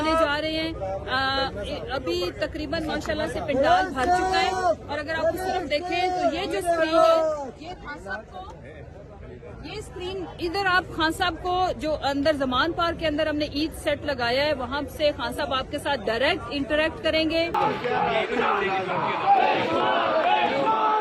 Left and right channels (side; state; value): both; identical; correlation 1.00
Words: जा रहे हैं। अभी तकरीबन माशाल्लाह से पंडाल भर चुका है और अगर आप उस तरफ देखें तो ये जो स्क्रीन है ये खान साहब को, ये स्क्रीन इधर आप खान साहब को जो अंदर जमान पार्क के अंदर हमने ईद सेट लगाया है वहां से खान साहब आपके साथ डायरेक्ट इंटरेक्ट करेंगे।